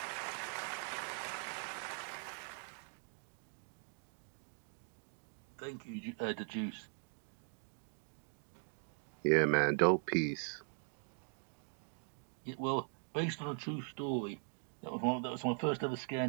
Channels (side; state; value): left; silent; 50 dB below the other